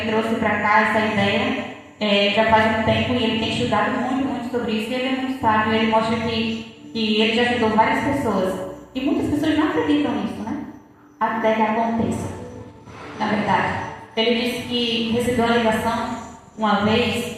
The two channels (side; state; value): both; identical; correlation 1.00